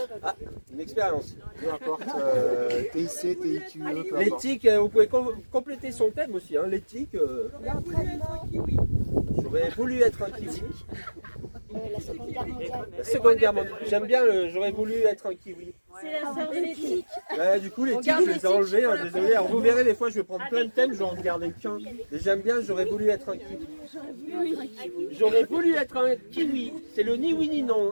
Ah, une expérience. Peu importe, TIC, TIQE, peu Les importe. tics, vous pouvez compléter son thème aussi. Hein. Les tics. J'aurais voulu être un kiwi. La Seconde Guerre mondiale. La Seconde Guerre mondiale. J'aime bien j'aurais voulu être un kiwi. C'est la sœur de l'éthique. Ouais, du coup, les tics, je les ai enlevés. Hein, désolé. Alors, vous verrez, des fois, je vais prendre plein de thèmes, je vais en garder qu'un. Et j'aime bien, j'aurais voulu être un kiwi. J'aurais voulu être un kiwi. C'est le ni oui ni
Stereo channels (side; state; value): both; inverted; correlation -1.00